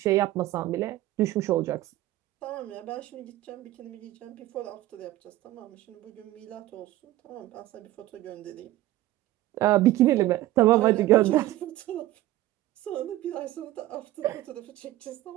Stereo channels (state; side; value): quieter; left; 15.5 dB